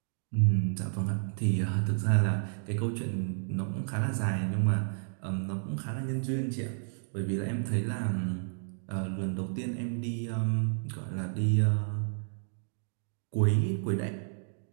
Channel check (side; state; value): left; silent; digital silence